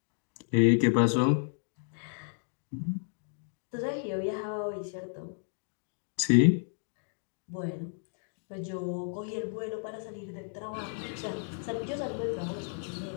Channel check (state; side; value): silent; right; 56 dB below the other